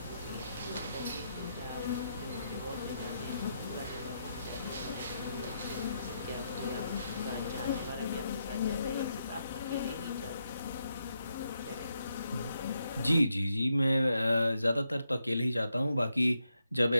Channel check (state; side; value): inverted; both; correlation -0.81